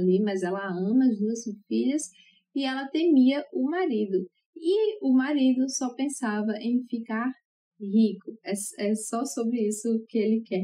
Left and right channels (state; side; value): identical; both; correlation 1.00